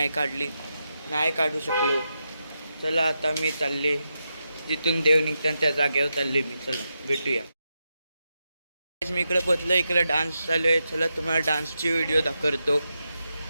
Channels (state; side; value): inverted; both; correlation -0.87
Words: काढू शकलो. चला आता मी चालले जिथून देव निघतात त्या जागेवर चालले मी. चला भेटूया. मी इकडे पोचलो. इकडे डान्स चालू आहे. चला तुम्हाला डान्सची व्हिडिओ दाखवतो.